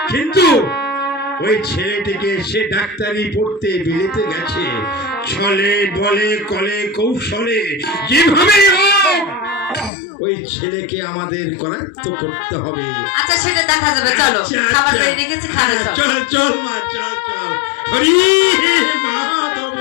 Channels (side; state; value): right; drops out; at 9.9 s